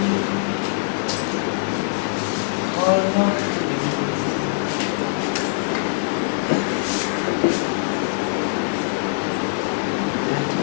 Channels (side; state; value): right; silent; digital silence